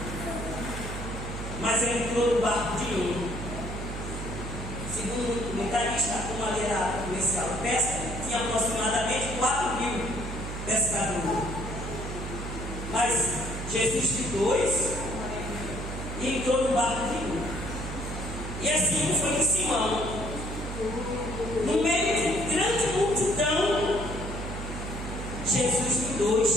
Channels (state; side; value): noise; right; hum, 6 dB below the sound